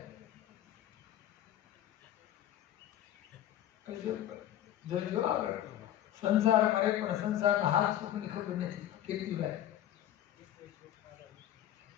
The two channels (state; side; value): quieter; right; 12.0 dB